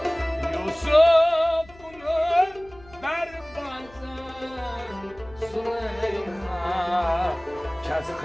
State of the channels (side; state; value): left; noise; hum, 23 dB below the sound